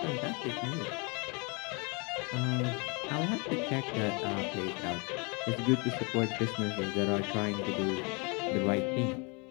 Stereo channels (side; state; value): right; quieter; 31.3 dB